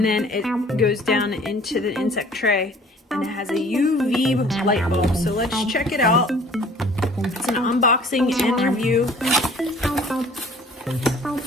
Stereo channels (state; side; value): normal; both; correlation 0.52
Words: then it goes down into the insect tray, and it has a UV light bulb. So let's check it out. It's an unboxing and review.